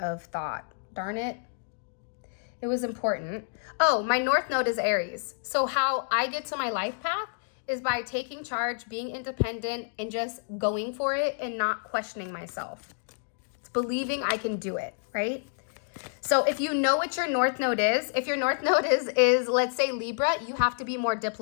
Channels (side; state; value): right; silent; digital silence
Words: thought. Darn it. It was important. Oh, my north node is Aries. So how I get to my life path is by taking charge, being independent, and just going for it and not questioning myself. It's believing I can do it, right? So if you know what your north node is, if your north node is let's say Libra, you have to be more